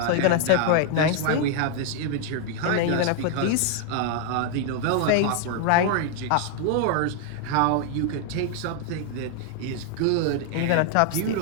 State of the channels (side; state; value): both; different; correlation 0.00